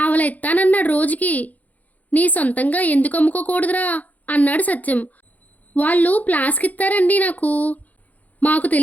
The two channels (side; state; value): right; late; 0.078 ms